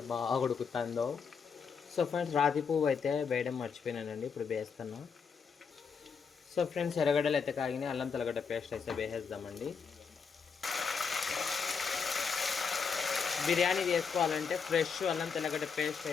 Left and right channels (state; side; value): quieter; right; 5.9 dB